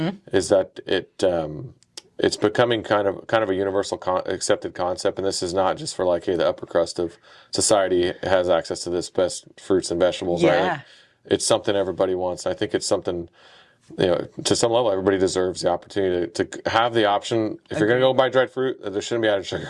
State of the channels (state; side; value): identical; both; correlation 1.00